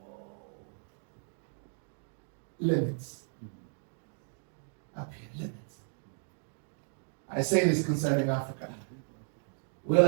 Limits. Up here, limits. I say this concerning Africa. We're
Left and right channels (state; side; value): silent; left; digital silence